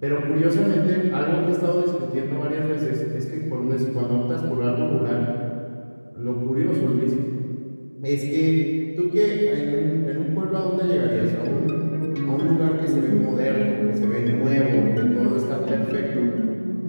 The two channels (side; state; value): both; inverted; correlation -1.00